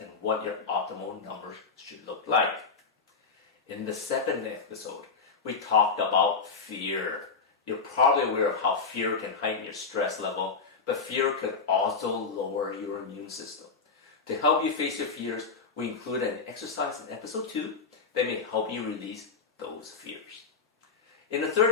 what your optimal numbers should look like. In the second episode, we talked about fear. You're probably aware of how fear can heighten your stress level, but fear could also lower your immune system. To help you face your fears, we included an exercise in episode 2 that may help you release those fears. In the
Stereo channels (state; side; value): quieter; right; 4.9 dB